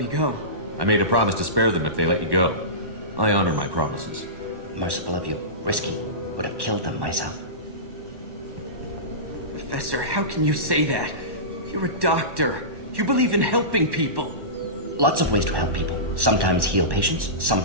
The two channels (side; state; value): left; late; 1.1 ms